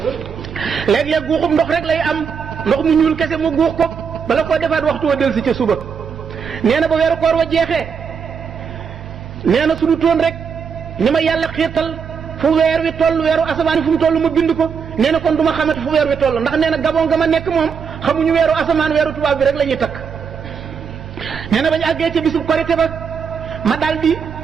léeg-léeg guuxum ndox rek lay am ndox mu ñuul kese mu guux ko bala koo defaat waxtu wa del si ca suba nee na ba weeru koor wa jeexee nee na suñu toon rek ni ma yàlla xiirtal fu weer wi toll weeru asamaan fu mu toll ma bind ko nee na kon du ma xamante fu weer wi toll ndax nee na Gabon nga ma nekk moom xamuñu weeru asamaan weeru tubaab bi rek la ñuy takk nee na bañ àggee ca bisub korite ba ma daal di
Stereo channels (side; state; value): left; quieter; 6.4 dB